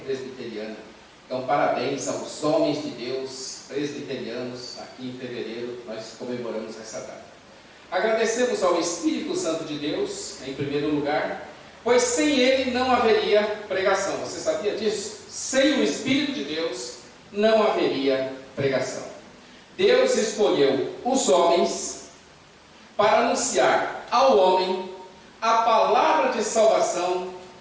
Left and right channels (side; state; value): both; identical; correlation 1.00